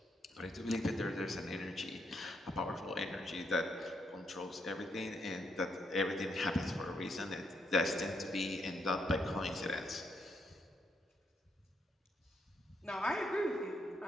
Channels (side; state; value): both; normal; correlation 0.77